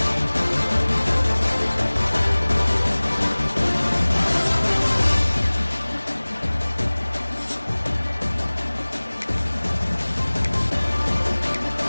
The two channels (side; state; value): both; inverted; correlation -1.00